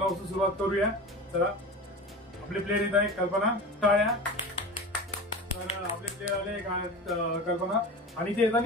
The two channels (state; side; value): normal; both; correlation 0.31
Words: सुरुवात करूया. चला आपले प्लेयर येत आहे कल्पना. टाळ्या. तर आपले प्लेयर आले कल्पना आणि ते